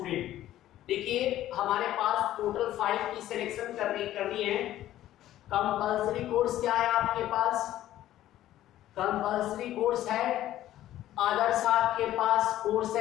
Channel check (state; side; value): quieter; right; 13.4 dB